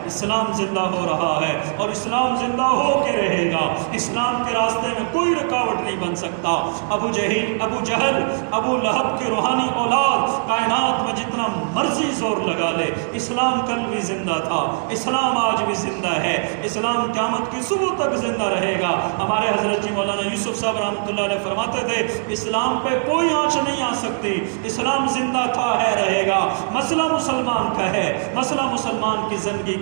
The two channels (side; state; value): left; silent; digital silence